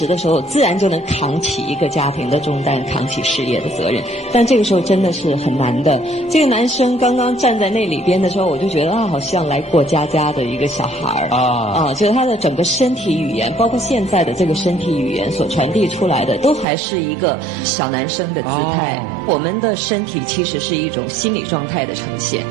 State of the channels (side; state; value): left; drops out; at 16.7 s